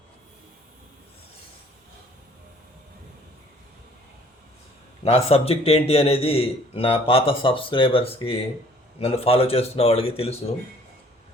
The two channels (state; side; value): normal; both; correlation 0.56